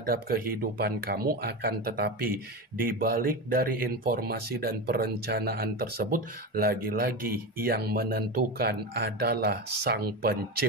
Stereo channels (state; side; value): normal; both; correlation 0.21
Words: kehidupan kamu, akan tetapi di balik dari informasi dan perencanaan tersebut, lagi-lagi yang menentukan adalah Sang